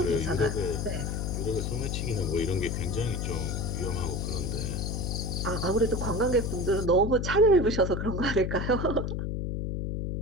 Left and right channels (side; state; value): left; noise; hum, 2 dB below the sound